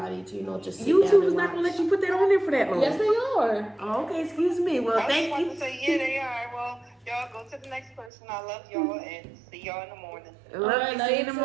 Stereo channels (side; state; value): left; drops out; at 8.1 s